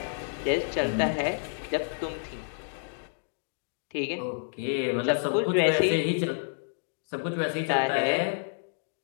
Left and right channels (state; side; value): silent; right; digital silence